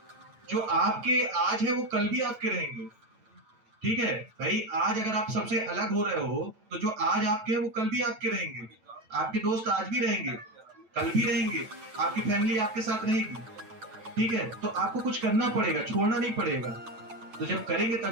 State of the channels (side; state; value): left; late; 9.0 ms